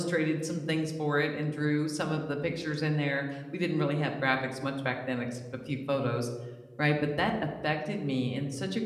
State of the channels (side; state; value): both; identical; correlation 1.00